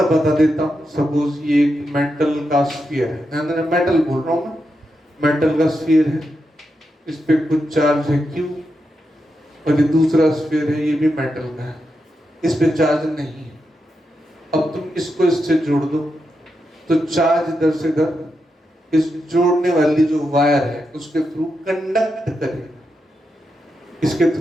बता देता हूं, सपोज ये एक मेटल का स्फीयर है, मेटल बोल रहा हूं मैं, मेटल का स्फीयर है, इस पे कुछ चार्ज है Q, और ये दूसरा स्फीयर है, ये भी मेटल का है, इस पे चार्ज नहीं है। अब तुम इसको इससे जोड़ दो तो चार्ज इधर से इधर इस जोड़ने वाली जो वायर है उसके थ्रू कंडक्ट करेगा, इसके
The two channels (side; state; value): both; normal; correlation 0.86